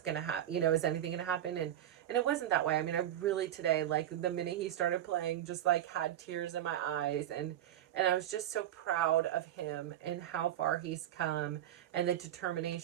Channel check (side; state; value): left; quieter; 11.8 dB